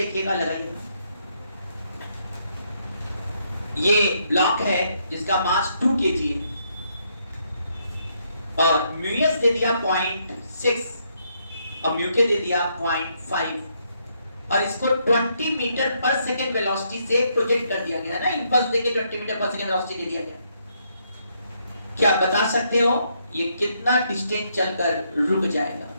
लगाइएगा। ये ब्लॉक है जिसका मास 2 kg है और म्यू एस दे दिया 0.6 और म्यू के दे दिया 0.5 और इसको 20 मीटर पर सेकेंड वेलोसिटी से प्रोजेक्ट कर दिया गया ना, इंपल्स देके 20 मीटर पर सेकेंड वेलोसिटी दे दिया गया। क्या बता सकते हो ये कितना डिस्टेंस चलकर रुक जाएगा?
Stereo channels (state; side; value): inverted; both; correlation -0.75